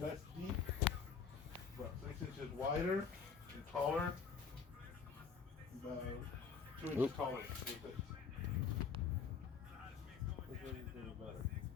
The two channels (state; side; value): quieter; right; 6.0 dB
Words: deep, about 6 inches wider and taller, about 2 inches taller.